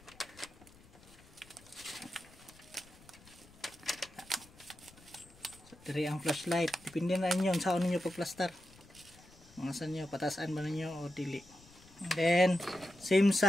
Dari ang flashlight, depende na inyo saan ninyo pagplastar. Mga saan nyo, patasan ba ninyo o dili. And then, same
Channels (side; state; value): left; noise; rumble, 24 dB below the sound